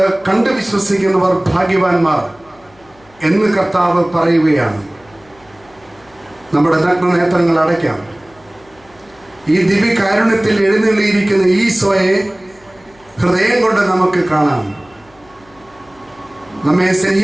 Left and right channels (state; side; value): noise; left; hum, 29 dB below the sound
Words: കണ്ട് വിശ്വസിക്കുന്നവർ ഭാഗ്യവാന്മാർ എന്ന് കർത്താവ് പറയുകയാണ്. നമ്മുടെ നഗ്ന നേത്രങ്ങൾ അടയ്ക്കാം. ഈ ദിവ്യകാരുണ്യത്തിൽ എഴുന്നള്ളിയിരിക്കുന്ന ഈശോയെ ഹൃദയം കൊണ്ട് നമുക്ക് കാണാം. നമ്മെ